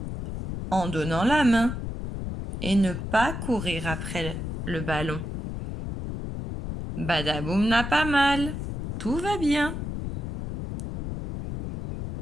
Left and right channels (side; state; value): left; noise; rumble, 5 dB below the sound